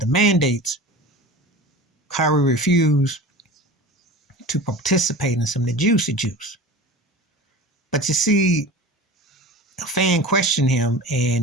mandates, Kyrie refused to participate in some of the juicy juice. But you see, a fan questioned him,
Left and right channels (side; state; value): both; normal; correlation 0.35